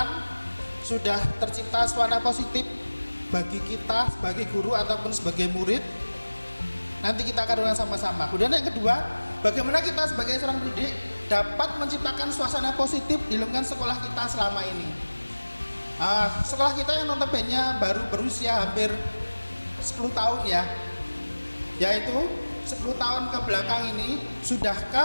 sudah tercipta suasana positif bagi kita sebagai guru ataupun sebagai murid? Nanti kita akan renungkan sama-sama. Kemudian yang kedua, bagaimana kita sebagai seorang pendidik dapat menciptakan suasana positif di lingkungan sekolah kita selama ini? Sekolah kita yang notabene baru berusia hampir 10 tahun ya, yaitu 10 tahun ke belakang ini,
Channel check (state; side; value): inverted; both; correlation -1.00